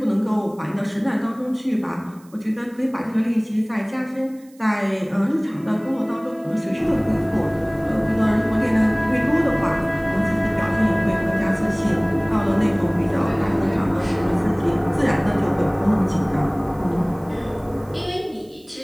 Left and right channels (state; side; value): noise; right; hiss, 29 dB below the sound